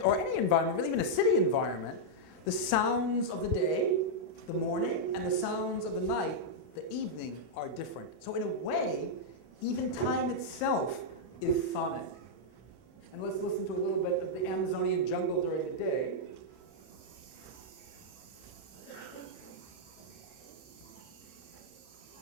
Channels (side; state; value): right; late; 32 ms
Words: or any environment, really even a city environment, the sounds of the day, the morning, and the sounds of the night, the evening, are different. So in a way, even time itself is sonic. And let's listen to a little bit of the Amazonian jungle during the day.